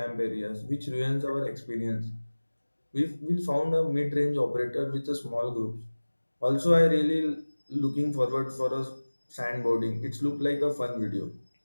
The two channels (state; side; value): inverted; both; correlation -1.00